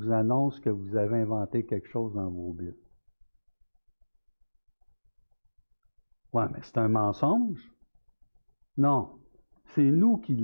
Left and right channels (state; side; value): inverted; both; correlation -1.00